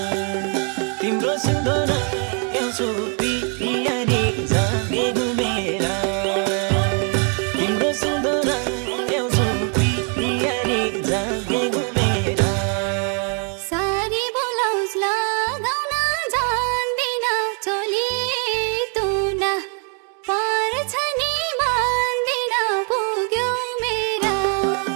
तिम्रो सुन्दर ल्याउँछु पियारी जागे घुमेरा तिम्रो सुन्दर ल्याउँछु पियारी जागे घुमेरा सारी ब्लाउज लगाउन जान्दिन चोली तुना पर्छ नि मान्दिन पुग्यो मेरा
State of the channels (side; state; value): left; quieter; 39.9 dB